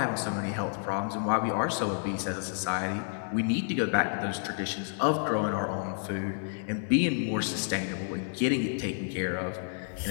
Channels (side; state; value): right; silent; digital silence